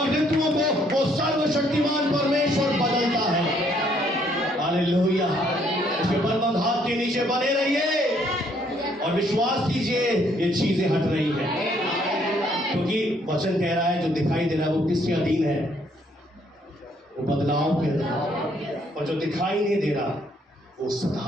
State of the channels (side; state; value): both; normal; correlation 0.67